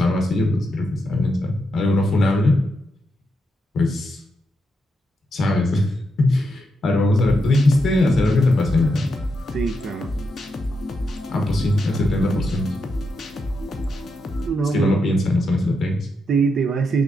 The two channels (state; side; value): normal; both; correlation 0.83